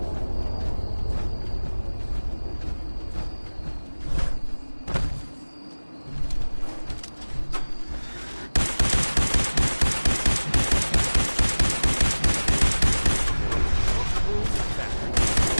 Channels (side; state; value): both; inverted; correlation -1.00